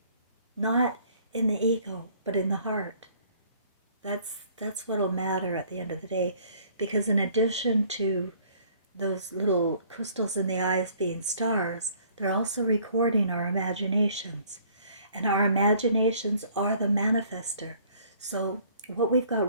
Not in the ego, but in the heart. That's what'll matter at the end of the day, because in addition to those little crystals in the eyes being stars, they're also recording our imaginations. And our imaginations are the manifester. So what we've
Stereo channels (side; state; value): both; inverted; correlation -0.58